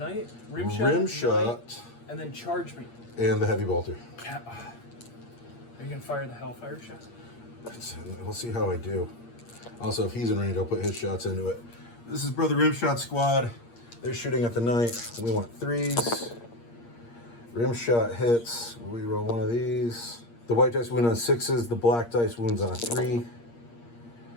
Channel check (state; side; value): late; right; 8.6 ms